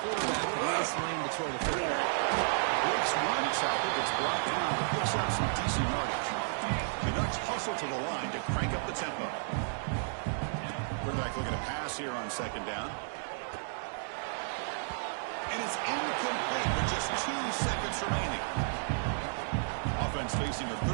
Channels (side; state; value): left; silent; digital silence